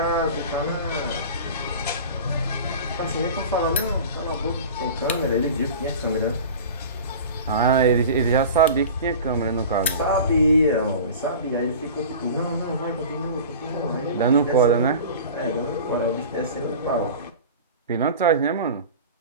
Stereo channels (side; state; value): both; inverted; correlation -0.36